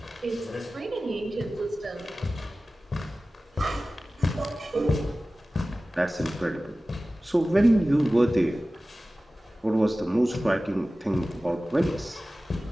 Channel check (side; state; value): both; normal; correlation 0.96